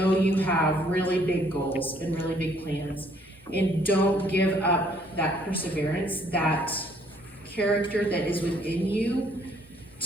you have really big goals and really big plans, and don't give up that perseverance, that character that is within you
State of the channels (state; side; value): normal; both; correlation 0.64